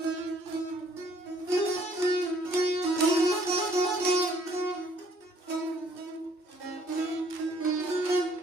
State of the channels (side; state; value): right; late; 2.6 ms